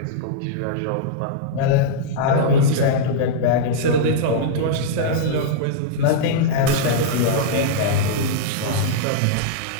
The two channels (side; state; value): both; different; correlation -0.02